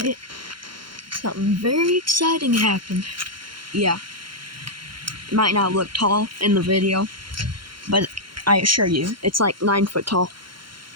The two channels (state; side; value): late; left; 0.73 ms